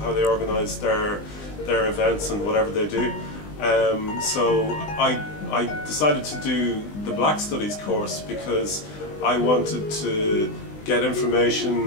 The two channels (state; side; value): late; right; 20 ms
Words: they organise their events and whatever they do. So I decided to do the Black Studies course because I wanted to get